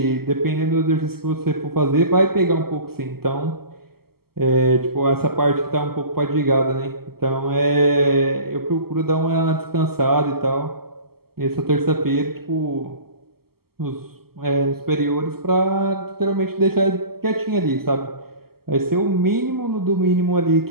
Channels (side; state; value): left; late; 0.95 ms